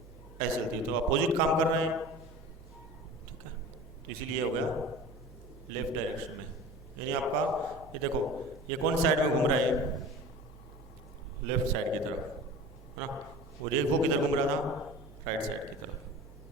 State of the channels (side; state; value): both; normal; correlation 0.38